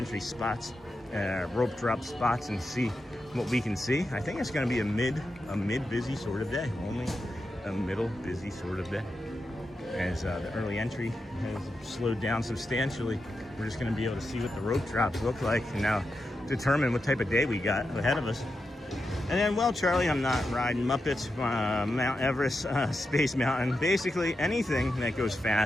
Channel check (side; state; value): both; normal; correlation 0.88